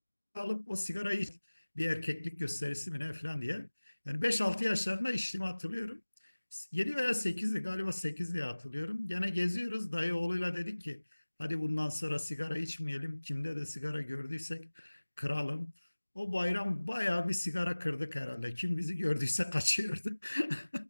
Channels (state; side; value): inverted; both; correlation -1.00